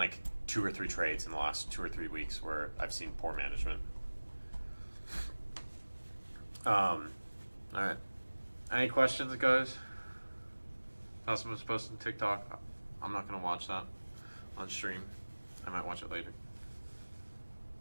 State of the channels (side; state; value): both; inverted; correlation -1.00